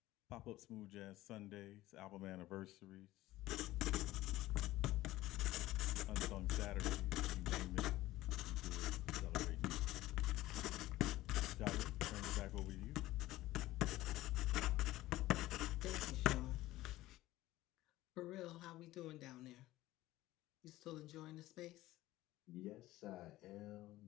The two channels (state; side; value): quieter; right; 16.6 dB